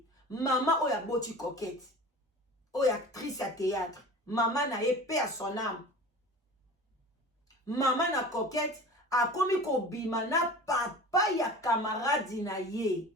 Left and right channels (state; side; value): normal; both; correlation 0.38